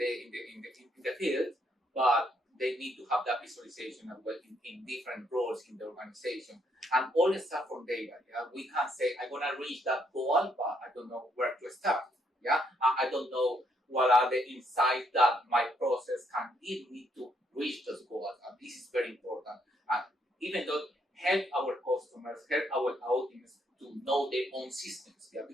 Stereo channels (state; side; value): normal; both; correlation 0.72